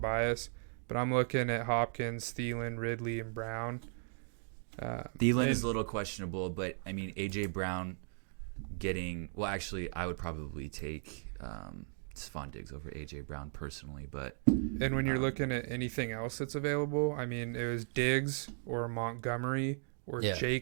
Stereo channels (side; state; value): left; silent; 53 dB below the other